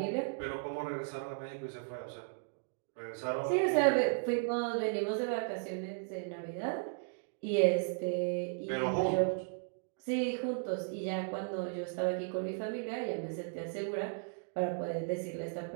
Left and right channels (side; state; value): left; silent; digital silence